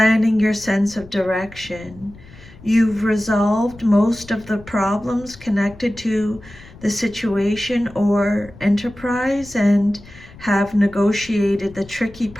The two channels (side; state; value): left; noise; rumble, 21 dB below the sound